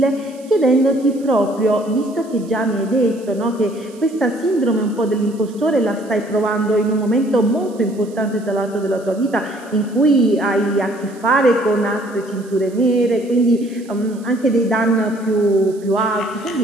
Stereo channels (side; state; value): right; noise; hiss, 25 dB below the sound